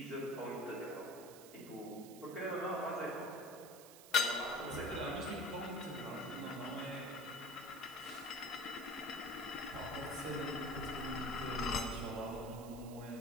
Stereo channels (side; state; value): right; noise; hiss, 16 dB below the sound